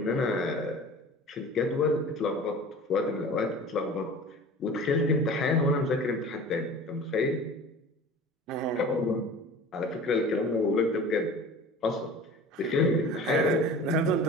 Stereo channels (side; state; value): both; normal; correlation 0.40